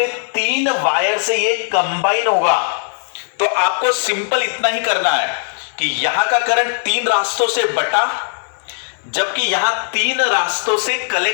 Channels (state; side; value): silent; right; digital silence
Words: 3 वायर से ये कंबाइन होगा, तो आपको सिंपल इतना ही करना है कि यहां का करंट 3 रास्तों से बटा, जबकि यहां 3 रास्तों से